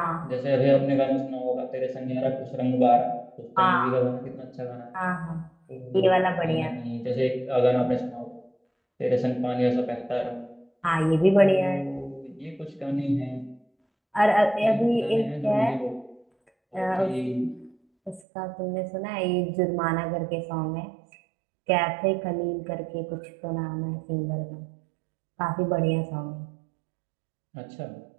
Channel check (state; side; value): drops out; left; at 18.2 s